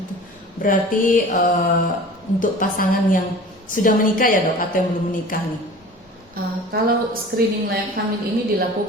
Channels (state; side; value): normal; both; correlation 0.41